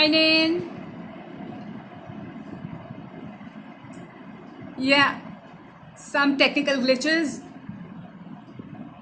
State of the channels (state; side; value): identical; both; correlation 1.00